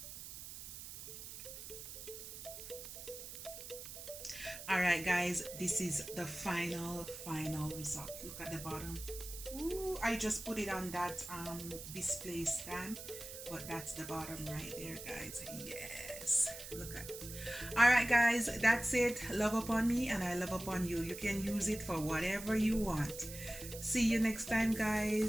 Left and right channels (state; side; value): noise; right; hiss, 11 dB below the sound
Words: All right guys, this is the final result. Look at the bottom. Ooh, I just put it on that display stand, but that's the bottom right there, guys. Yes, look at it. All right guys, that's it. Love upon me and I love upon you. You can use it for whatever you want. See you next time,